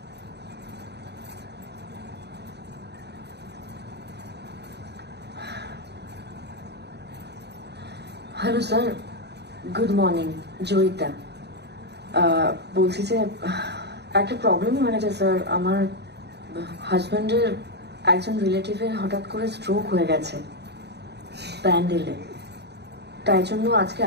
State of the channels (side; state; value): left; late; 0.49 ms